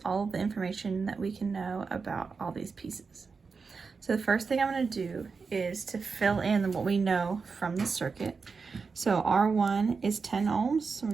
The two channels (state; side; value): quieter; left; 4.9 dB